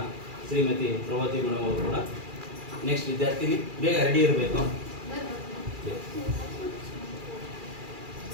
ಶ್ರೀಮತಿ ಪ್ರಭಾವತಿ ಮೇಡಮ್ ಅವರು ಕೂಡ ನೆಕ್ಸ್ಟ್ ವಿದ್ಯಾರ್ಥಿನಿ ಬೇಗ ರೆಡಿ ಇರಬೇಕು.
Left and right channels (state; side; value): late; left; 2.4 ms